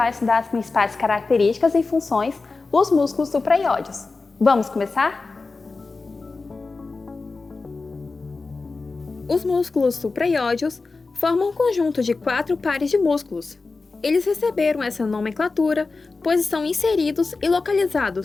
estudar as principais características e funções dos músculos supraioides. Vamos começar? Os músculos supraioides formam um conjunto de 4 pares de músculos. Eles receberam essa nomenclatura pois estão inseridos e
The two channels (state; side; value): quieter; right; 3.9 dB